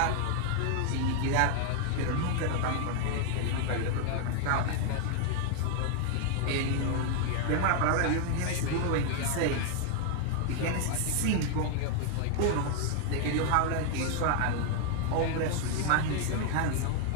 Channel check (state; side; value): different; both; correlation 0.00